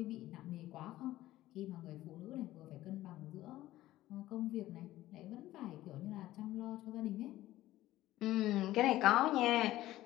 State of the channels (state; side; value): quieter; right; 15.4 dB